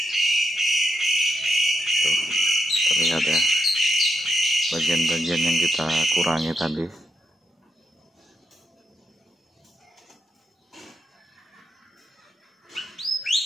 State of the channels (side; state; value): both; normal; correlation 0.82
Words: Terlihat ya bagian-bagian yang kita kurangi tadi.